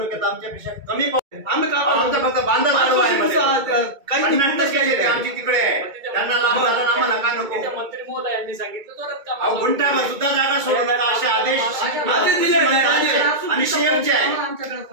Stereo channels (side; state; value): left; late; 2.3 ms